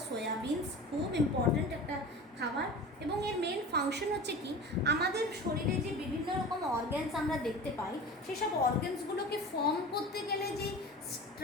সয়াবিনস, খুব ইম্পর্ট্যান্ট একটা খাবার। এবং এর মেন ফাংশন হচ্ছে কি, আমাদের শরীরে যে বিভিন্ন রকম অর্গ্যানস আমরা দেখতে পাই, সেসব অর্গ্যানসগুলোকে ফর্ম করতে গেলে যে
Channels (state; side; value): normal; both; correlation 0.35